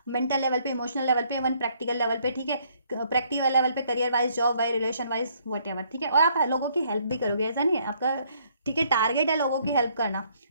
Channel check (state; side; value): inverted; both; correlation -0.66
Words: मेंटल लेवल पे, इमोशनल लेवल पे, इवन प्रैक्टिकल लेवल पे, ठीक है, प्रैक्टिकल लेवल पे, career wise, job wise, relation wise, what ever, ठीक है। और आप लोगों की हेल्प भी करोगे, ऐसा नहीं है आपका, ठीक है, टारगेट है लोगों की हेल्प करना,